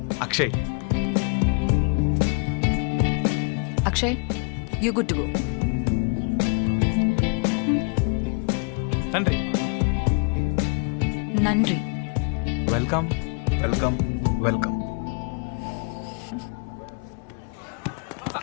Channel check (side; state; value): right; quieter; 36.5 dB